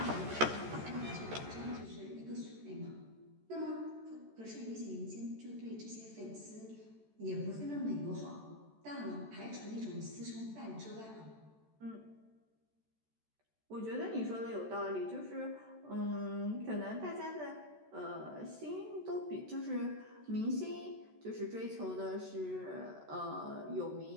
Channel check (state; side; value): late; left; 14 ms